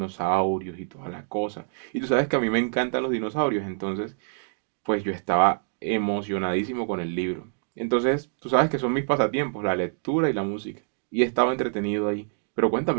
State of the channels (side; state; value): left; silent; digital silence